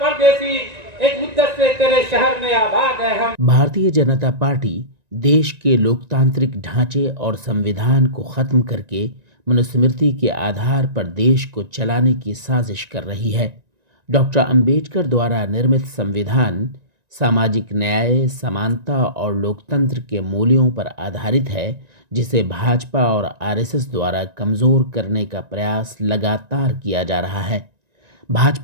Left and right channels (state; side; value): late; left; 1.9 ms